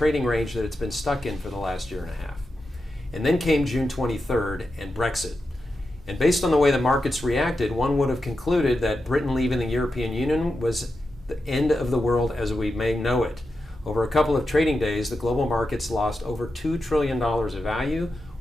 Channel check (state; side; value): normal; both; correlation 0.89